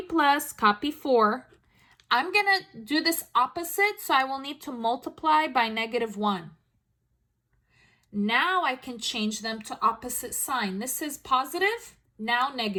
plus, copy 4. I'm going to do this opposite, so I will need to multiply by negative 1. Now I can change them to opposite sign. This is positive, now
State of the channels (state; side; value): identical; both; correlation 1.00